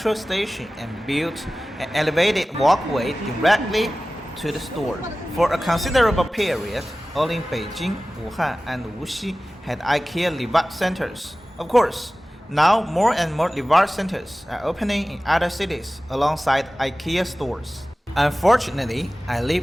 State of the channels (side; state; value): both; normal; correlation 0.97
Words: station and built an elevated walkway directly to the store. For a considerable period, only Beijing, Wuhan and Wuxi had IKEA Livat centers. Of course, now more and more Livat centers are opening in other cities alongside IKEA stores. Unfortunately, I live